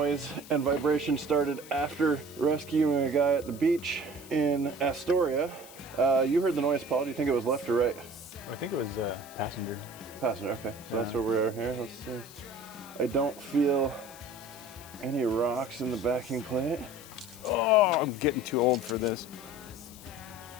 and vibration started after rescuing a guy at the beach in Astoria. You heard the noise, Paul. Do you think it was left or right? I think it was passenger. Passenger, okay. So that's where we are here. Let's see. I don't feel any rocks in the backing plate. Oh, I'm getting too old for this.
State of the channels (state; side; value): noise; left; hiss, 18 dB below the sound